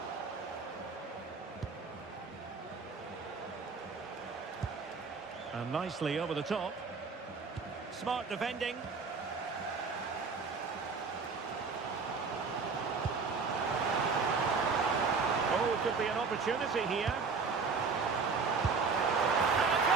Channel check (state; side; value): quieter; left; 4.9 dB